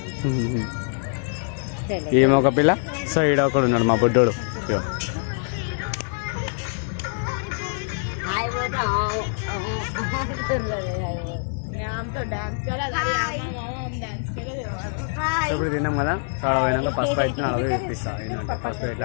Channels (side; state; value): right; silent; digital silence